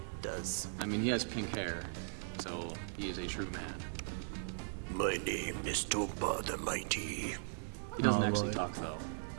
Does. I mean, he has pink hair, so he is a true man. My name is Tomba the Mighty. He doesn't actually talk though,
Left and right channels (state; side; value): silent; left; digital silence